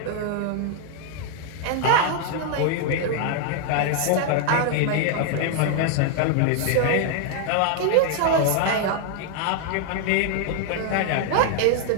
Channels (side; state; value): both; different; correlation 0.00